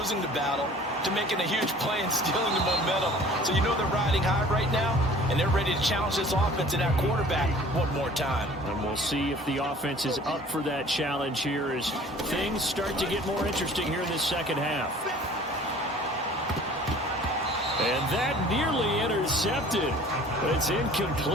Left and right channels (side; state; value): both; normal; correlation 0.48